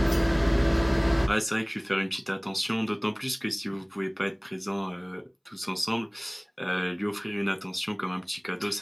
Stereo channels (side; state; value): both; identical; correlation 1.00